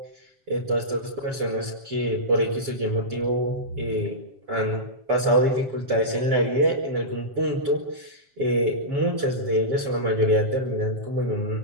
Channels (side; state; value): left; late; 7.4 ms